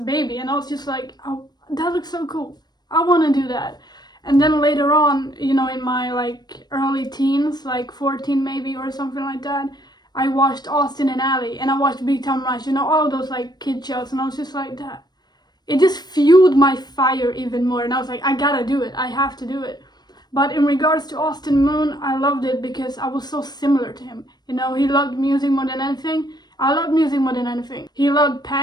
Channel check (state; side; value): late; right; 0.20 ms